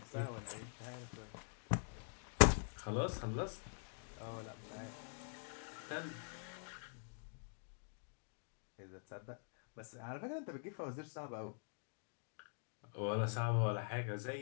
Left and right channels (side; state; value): right; silent; digital silence